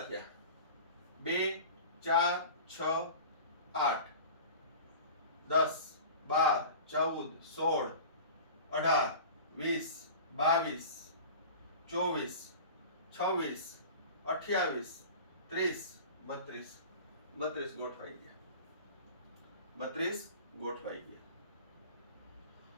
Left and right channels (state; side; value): inverted; both; correlation -0.37